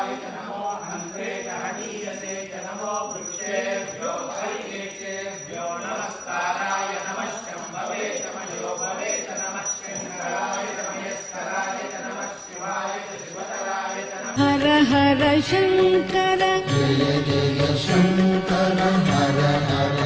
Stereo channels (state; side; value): identical; both; correlation 1.00